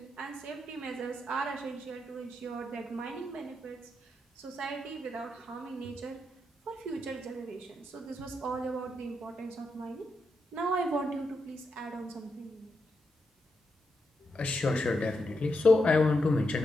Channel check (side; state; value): both; normal; correlation 0.84